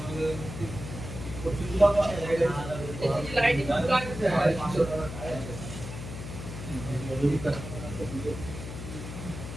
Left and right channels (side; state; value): left; noise; hum, 9 dB below the sound